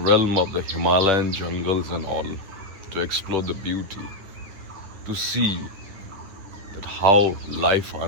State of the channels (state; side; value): late; left; 11 ms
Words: of the Himalayan jungles and all, to explore the beauty, to see that how life